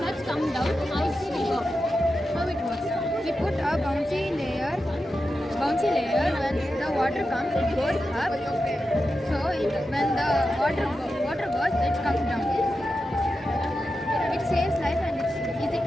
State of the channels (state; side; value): normal; both; correlation 0.90